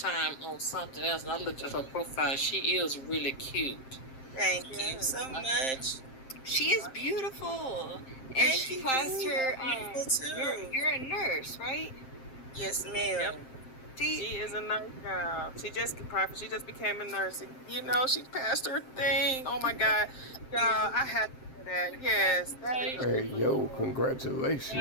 on something else, and I looked at her profile. She is really cute. Thank you so much. She is beautiful. And Thank she you. passed her, Beautiful too. you're a nurse, right? Yes, ma'am. Yep. See, She is a nurse girl. She just became a nurse. You know, she passed her thing. Oh my God, y'all! I had to do that. Yes, that is Hey, yo,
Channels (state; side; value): late; right; 7.6 ms